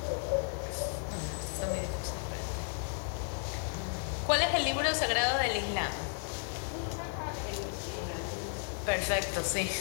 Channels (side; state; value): right; silent; 55 dB below the other